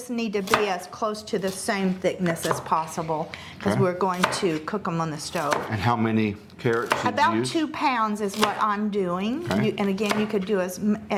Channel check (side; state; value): both; identical; correlation 1.00